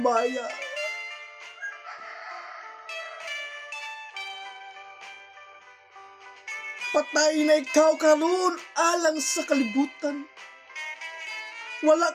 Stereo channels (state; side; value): identical; both; correlation 1.00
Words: Patay na ikaw karon alang sa kalibutan.